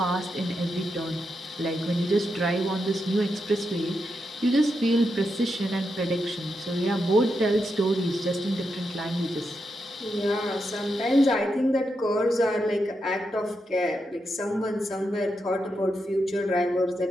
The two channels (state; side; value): normal; both; correlation 0.85